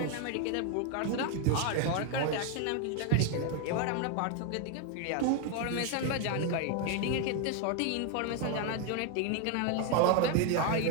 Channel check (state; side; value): different; both; correlation 0.01